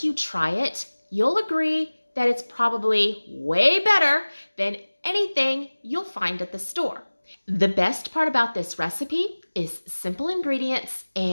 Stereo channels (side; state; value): both; inverted; correlation -1.00